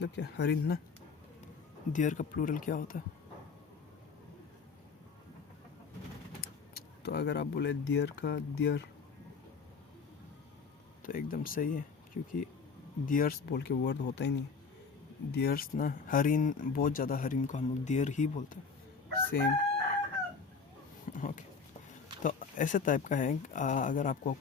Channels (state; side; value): quieter; right; 5.1 dB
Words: क्या? हरिण ना। डियर का प्लूरल क्या होता है? तो अगर आप बोले डियर का डियर, तो एकदम सही है, क्योंकि डियर्स बोल के वर्ड होता ही नहीं। डियर्स ना, हरिण, बहुत ज़्यादा हरिण को हम लोग डियर ही बोलते हैं, सेम। ओके, तो ऐसे टाइप का है। अगर आपको